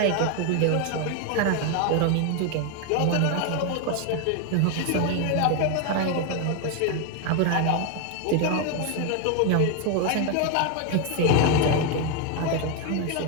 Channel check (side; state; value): both; different; correlation 0.01